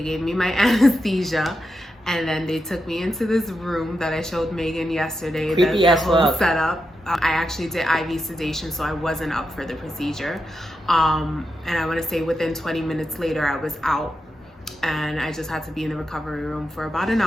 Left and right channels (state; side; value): normal; both; correlation 0.87